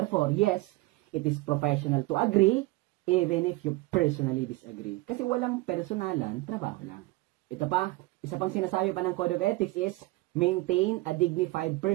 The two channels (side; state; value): left; quieter; 21.1 dB